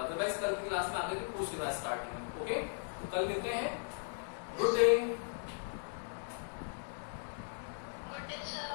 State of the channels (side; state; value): right; silent; digital silence